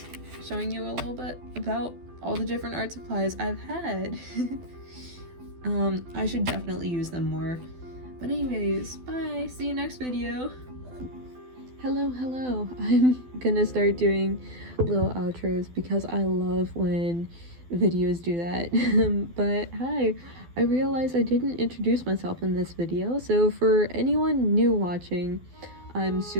showing you a little bit about all the different art supplies I've had. I should definitely use them more. But anyways, bye! See you next video! Hello! I'm gonna start doing little outros because I love when videos do that. But hi, I realized I didn't introduce myself in this video, so for anyone new watching, I'm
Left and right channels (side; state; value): left; late; 12 ms